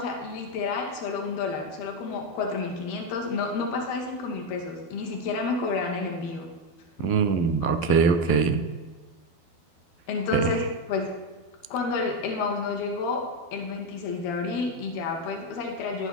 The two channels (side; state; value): right; late; 12 ms